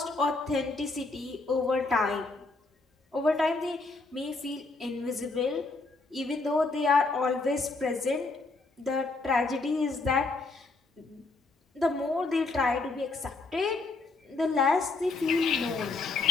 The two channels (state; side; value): quieter; right; 3.6 dB